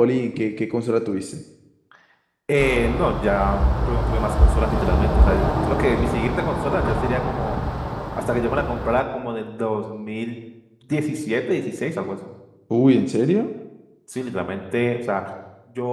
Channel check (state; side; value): identical; both; correlation 1.00